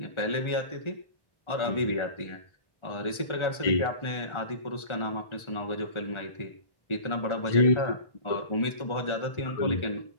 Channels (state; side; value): late; right; 1.3 ms